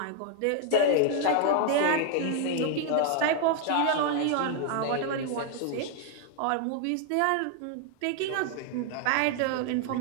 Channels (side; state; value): both; different; correlation 0.00